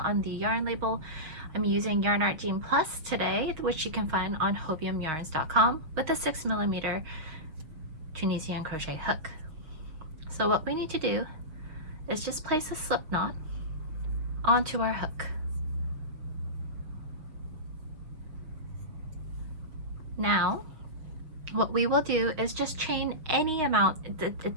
the yarn label. I'm using Yarn Art Jean Plus today, which you can find on hobiumyarns.com, with a 6mm Tunisian crochet hook. So what we need to do is just place a slip knot onto our hook. Now, what we will do is just chain any amount. It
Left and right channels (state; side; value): late; left; 6.6 ms